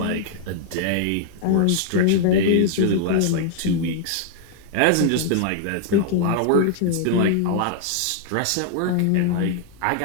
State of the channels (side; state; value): both; different; correlation -0.01